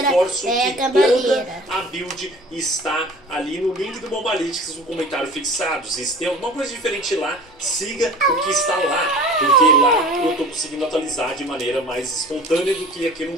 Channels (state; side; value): normal; both; correlation 0.42